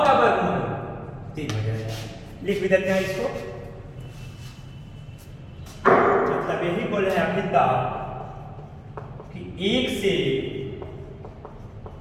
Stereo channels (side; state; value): both; identical; correlation 1.00